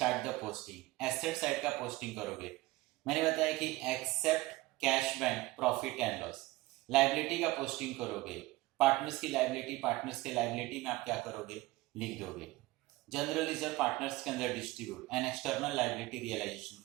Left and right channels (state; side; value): quieter; left; 19.6 dB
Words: the posting, asset side का पोस्टिंग करोगे। मैंने बताया कि except cash bank profit and loss, liability का पोस्टिंग करोगे। पार्टनर्स की लायबिलिटी, पार्टनर्स के लायबिलिटी में आप क्या करोगे, लिख दोगे। जनरल रिजर्व पार्टनर्स के अंदर distribute and external liability realisation